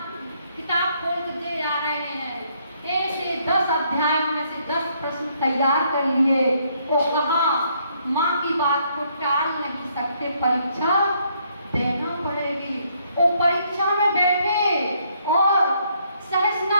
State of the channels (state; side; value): inverted; both; correlation -0.70